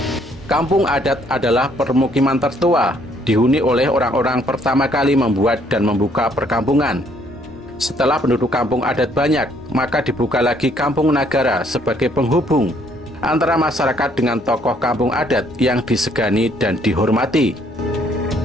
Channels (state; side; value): normal; both; correlation 0.66